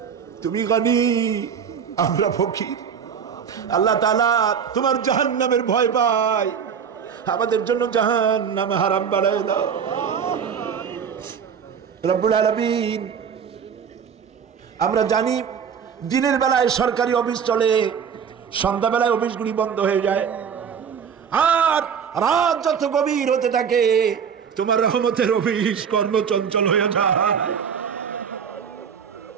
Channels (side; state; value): left; quieter; 7.2 dB